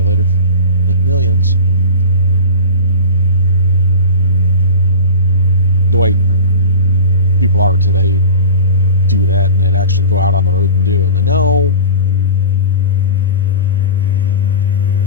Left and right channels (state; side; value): inverted; both; correlation -0.32